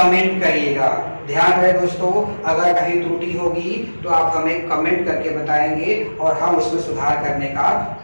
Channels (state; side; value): inverted; both; correlation -1.00